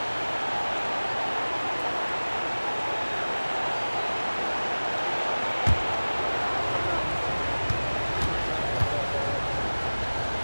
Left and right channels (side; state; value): both; inverted; correlation -1.00